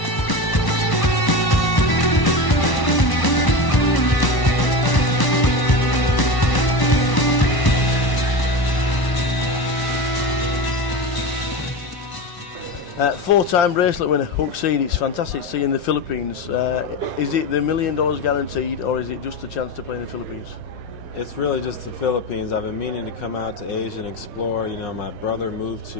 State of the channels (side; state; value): right; late; 1.0 ms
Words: Four-time bracelet winner, Huck Seed. It's fantastic to see in the Philippines. Is it the $1 million guaranteed, or is it just a chance to play in the Philippines? It's really just the Philippines. I've been meaning to come out to Asia and explore. You know, my brother moved